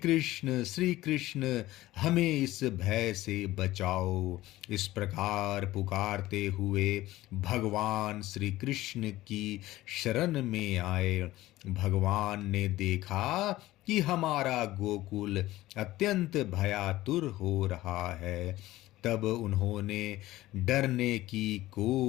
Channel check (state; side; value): quieter; right; 16.6 dB